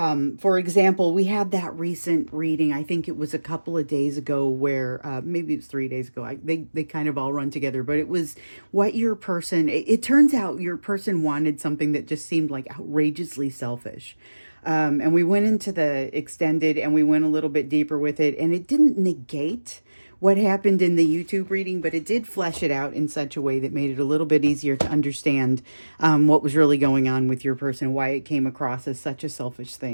example, we had that recent reading, I think it was a couple of days ago, where, maybe it was 3 days ago. They kind of all run together, but it was what your person, it turns out your person wanted something that just seemed like outrageously selfish. And we went into the extended, and we went a little bit deeper with it, and it didn't negate what happened in the YouTube reading, but it did flesh it out in such a way that made it a little bit easier to understand what was really going on with your person, why it came across as such a selfish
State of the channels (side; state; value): both; inverted; correlation -1.00